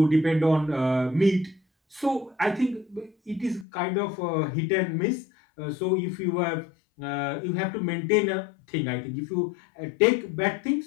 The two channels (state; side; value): drops out; right; at 3.7 s